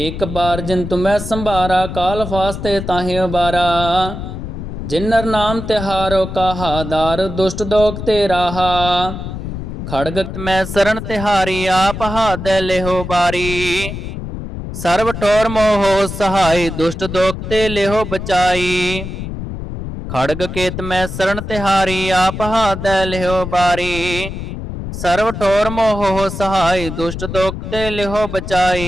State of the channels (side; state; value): left; noise; rumble, 7 dB below the sound